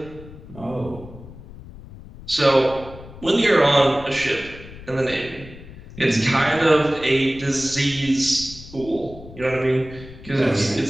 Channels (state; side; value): noise; left; rumble, 16 dB below the sound